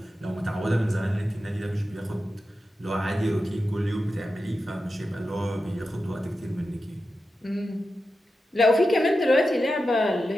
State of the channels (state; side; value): normal; both; correlation 0.90